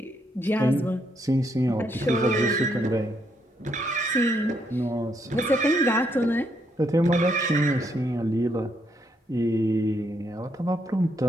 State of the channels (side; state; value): both; normal; correlation 0.75